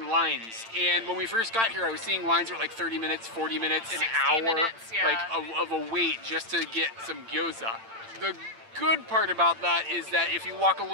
lines, and when we first got here I was seeing lines were like 30 minutes, 40 minutes, an hour, minutes, yeah. like of a wait just to get some gyoza. The good part about that is that if you walk a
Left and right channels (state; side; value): late; left; 8.8 ms